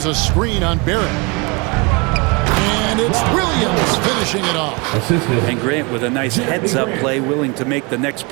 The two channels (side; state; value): left; quieter; 28.9 dB